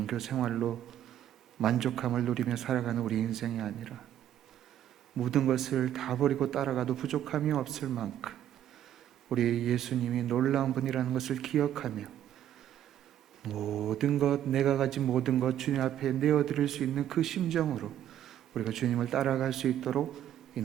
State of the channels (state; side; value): quieter; left; 11.1 dB